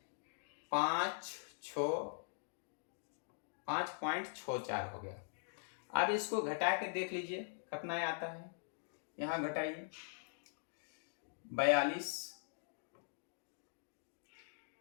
5.64 हो गया। अब इसको घटा के देख लीजिए कितना आता है, यहाँ घटाइए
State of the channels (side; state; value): right; silent; digital silence